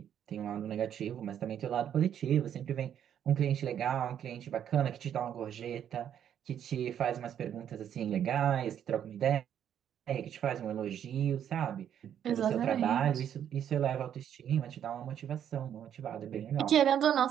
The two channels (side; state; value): left; quieter; 9.5 dB